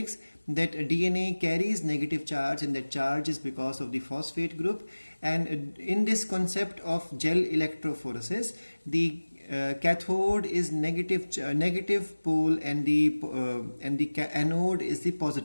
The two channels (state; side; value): inverted; both; correlation -1.00